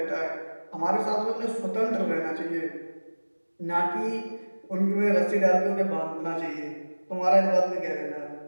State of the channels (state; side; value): inverted; both; correlation -1.00